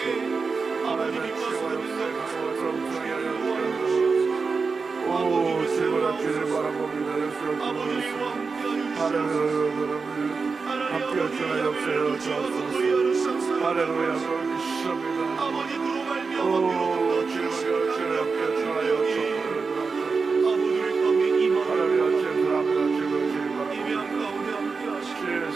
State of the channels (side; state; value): left; quieter; 4.7 dB